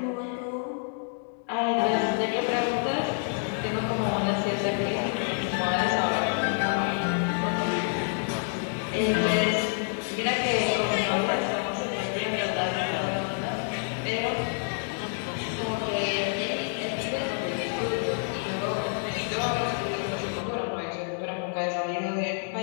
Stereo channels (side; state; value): right; silent; 59 dB below the other